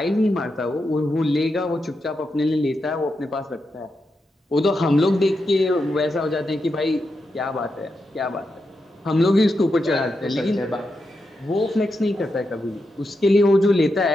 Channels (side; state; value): both; normal; correlation 0.86